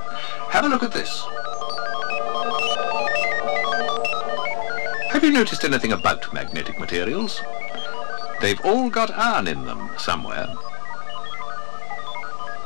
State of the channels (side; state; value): right; silent; 62 dB below the other